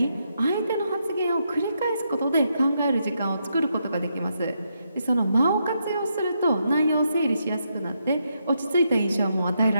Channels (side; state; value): both; inverted; correlation -0.80